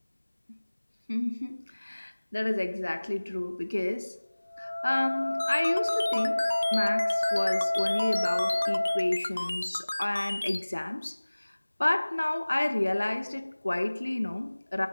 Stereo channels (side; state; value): both; inverted; correlation -1.00